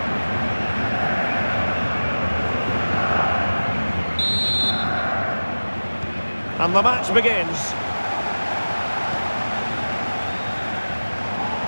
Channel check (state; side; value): inverted; both; correlation -1.00